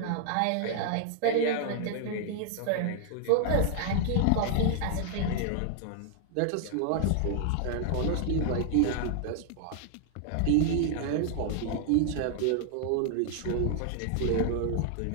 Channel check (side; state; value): both; different; correlation -0.01